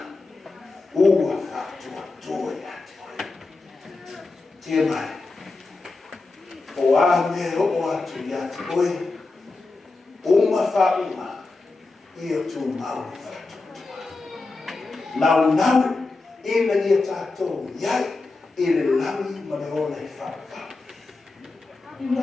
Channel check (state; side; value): quieter; right; 3.5 dB